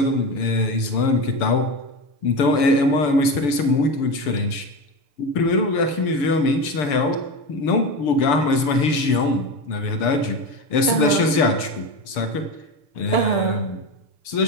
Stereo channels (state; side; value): late; right; 6.8 ms